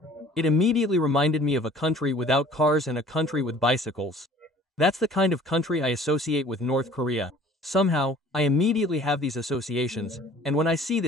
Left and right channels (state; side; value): normal; both; correlation 0.50